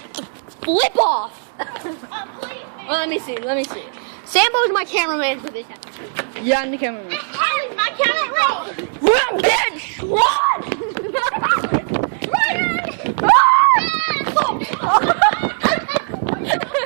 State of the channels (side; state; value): left; silent; 67 dB below the other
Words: Flip off. Well, let me see. Sambo's my cameraman for this episode. Yeah, I'm the cameraman. Riley's my cameraman. Run, bitch! Run!